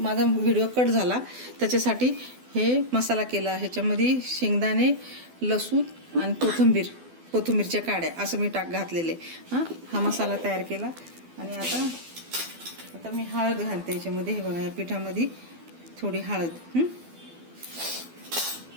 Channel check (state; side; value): late; left; 12 ms